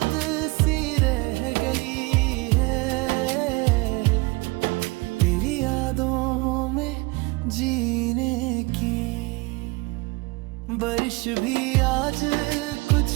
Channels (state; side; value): quieter; left; 25.4 dB